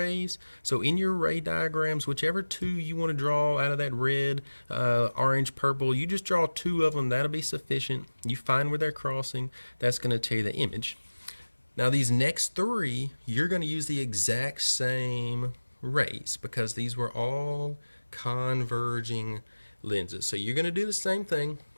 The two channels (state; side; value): inverted; both; correlation -1.00